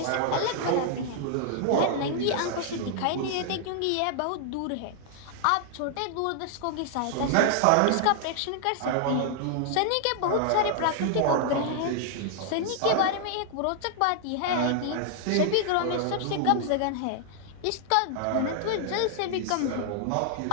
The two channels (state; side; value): different; both; correlation -0.01